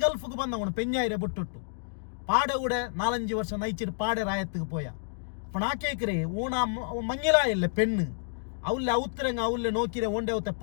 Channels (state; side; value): silent; right; digital silence